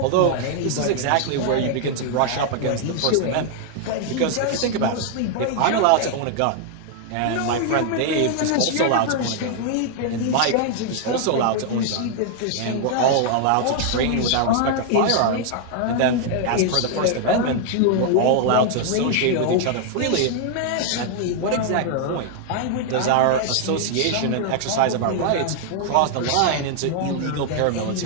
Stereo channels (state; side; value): different; both; correlation 0.00